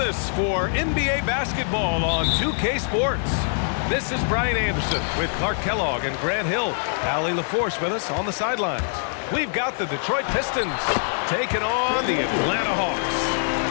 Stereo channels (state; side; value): silent; right; digital silence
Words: us for NBA basketball on 2K Sports. This is Brian Anderson with Clark Kellogg and Grant Hill. Allie LaForce with us on the sidelines. We've got the Detroit Pistons taking on the Atlanta Hawks.